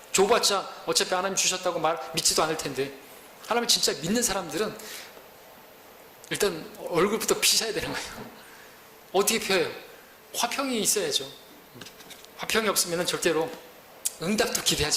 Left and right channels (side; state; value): both; identical; correlation 1.00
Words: 줘봤자 어차피 하나님 주셨다고 믿지도 않을 텐데. 하나님 진짜 믿는 사람들은 일단 얼굴부터 피셔야 되는 거예요. 어떻게 펴요? 화평이 있어야죠. 화평이 없으면 절대로 응답도